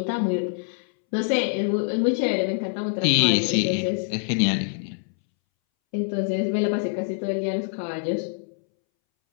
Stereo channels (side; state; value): right; silent; 62 dB below the other